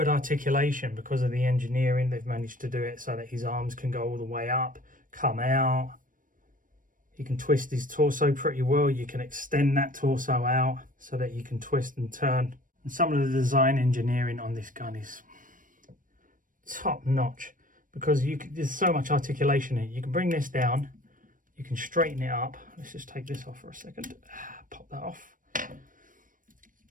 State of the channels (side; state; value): left; late; 0.39 ms